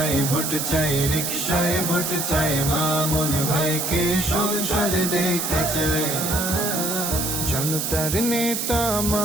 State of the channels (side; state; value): right; noise; hiss, 1 dB below the sound